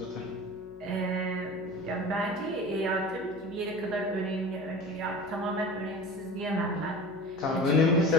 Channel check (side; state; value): left; noise; hum, 24 dB below the sound